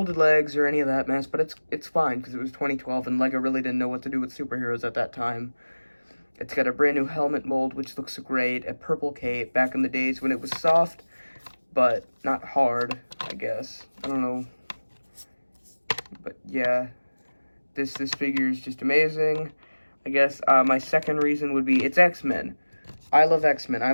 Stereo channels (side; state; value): both; inverted; correlation -1.00